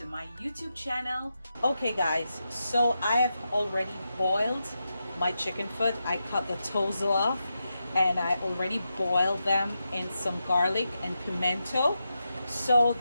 my YouTube channel. Okay, guys, so I have already boiled my chicken foot. I cut the toes off, and I already boiled them in some garlic and pimento, so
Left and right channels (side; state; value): both; inverted; correlation -0.88